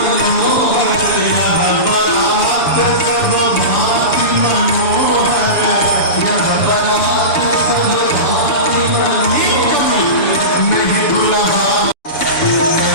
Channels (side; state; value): right; late; 7.1 ms